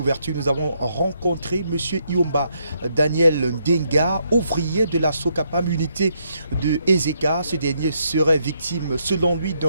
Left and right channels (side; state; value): both; inverted; correlation -0.75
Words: nous avons rencontré M. Iomba Daniel Ndenga, ouvrier de la Sokapam, unité de Ezeka. Ce dernier serait victime, selon lui,